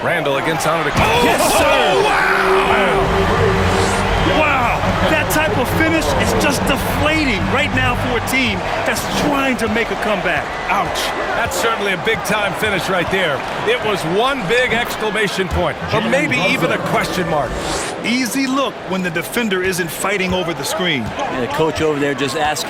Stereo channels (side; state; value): both; identical; correlation 1.00